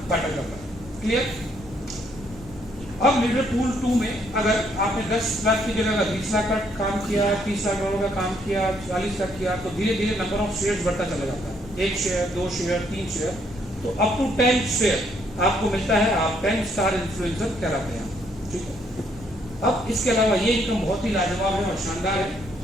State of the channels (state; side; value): normal; both; correlation 0.70